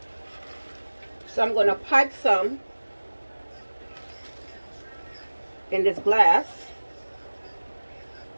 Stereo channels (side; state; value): both; inverted; correlation -1.00